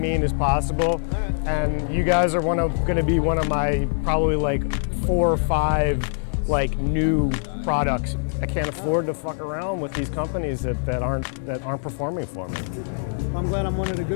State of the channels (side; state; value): right; silent; 63 dB below the other